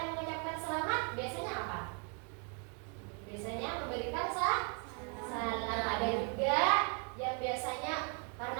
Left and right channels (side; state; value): left; quieter; 38.6 dB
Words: mengucapkan selamat, biasanya apa? Biasanya memberikan salam. Ada juga yang biasanya